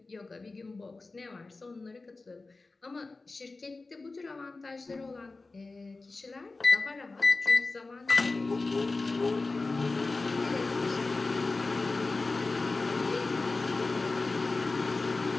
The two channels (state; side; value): quieter; right; 3.6 dB